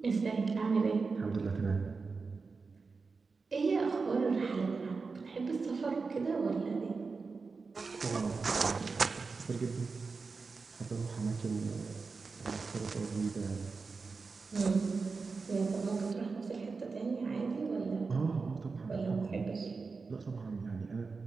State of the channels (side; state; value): left; quieter; 4.5 dB